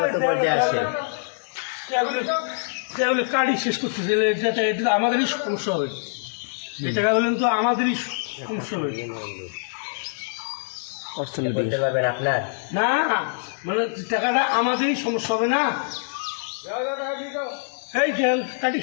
পর্যায়ে আছে? কার্ডই শেষ করতেছে, এটা আমাদেরই সমস্যা হবে। এই টাকা বললেন তো আমাদেরই সমস্যা হবে। বলতে পারবেন আপনার? না মানে টাকাটা আমাদেরই সমস্যা হবে না। এই কাটি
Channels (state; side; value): silent; right; 62 dB below the other